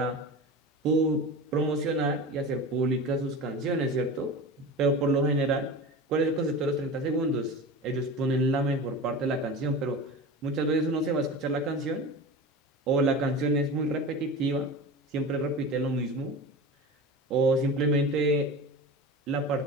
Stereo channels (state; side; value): normal; both; correlation 0.31